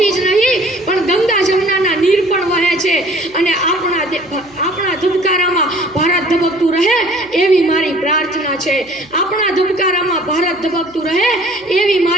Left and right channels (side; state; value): right; noise; hum, 29 dB below the sound